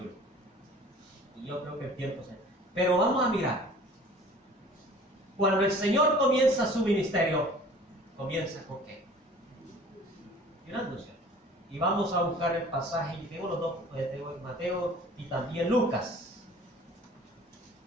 Y yo creo que el tiempo se... Pero vamos a mirar. Cuando el Señor comienza su ministerio, ¿comienza con qué? Ayunándose. Y vamos a buscar el pasaje, y tengo los dos, tengo Mateo y también Lucas.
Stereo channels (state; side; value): normal; both; correlation 0.47